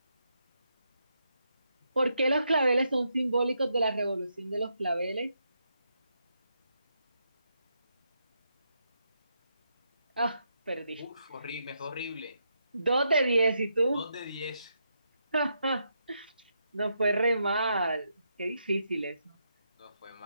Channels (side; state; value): both; inverted; correlation -0.80